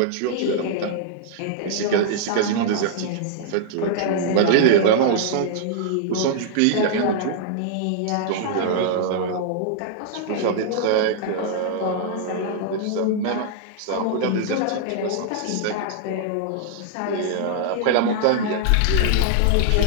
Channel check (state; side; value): different; both; correlation -0.01